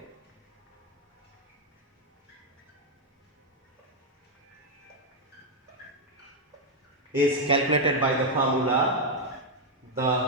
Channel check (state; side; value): normal; both; correlation 0.01